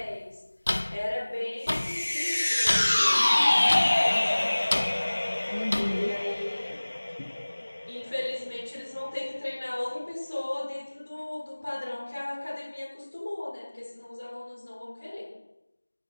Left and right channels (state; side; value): inverted; both; correlation -1.00